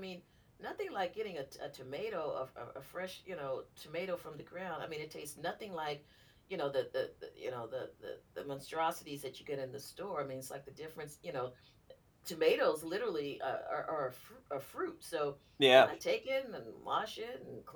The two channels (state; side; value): identical; both; correlation 1.00